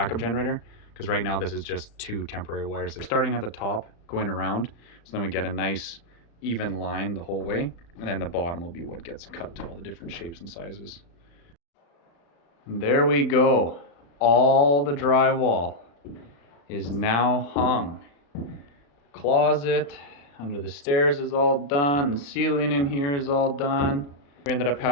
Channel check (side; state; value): right; late; 35 ms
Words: generator, because right now this is just 2 temporary wires. They're starting at the top, going around, so then we get a nice even line the whole way, and then the bottom will be what gets cut to all the different shapes and sizes. And there we go. All the drywall is now hung. Closet under the stairs is all done. The ceiling in here is all done. We ended up